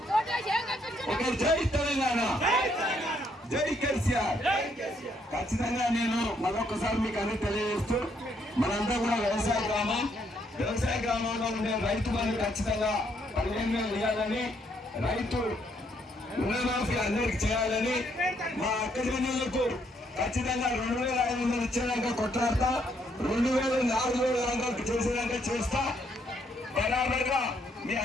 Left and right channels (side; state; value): both; normal; correlation 0.72